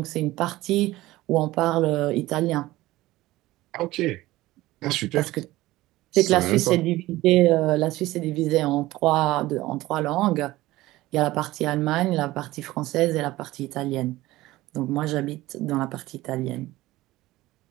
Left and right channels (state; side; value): quieter; left; 17.7 dB